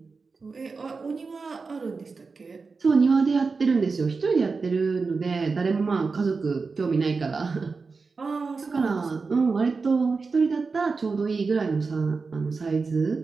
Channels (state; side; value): quieter; left; 4.5 dB